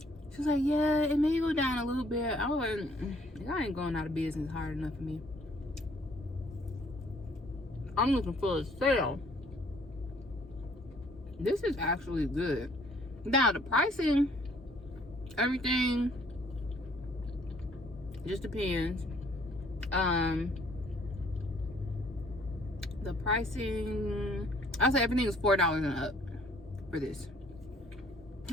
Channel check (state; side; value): normal; both; correlation 0.62